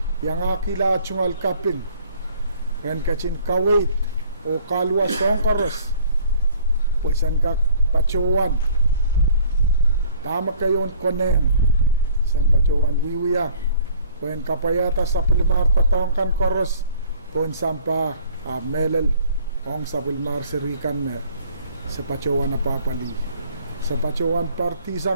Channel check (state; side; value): inverted; both; correlation -0.55